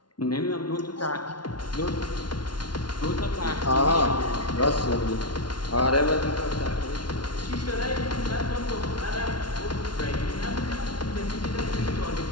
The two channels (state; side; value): late; right; 0.71 ms